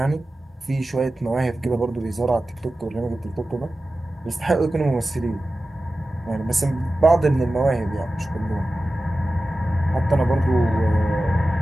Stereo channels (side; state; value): both; normal; correlation 0.95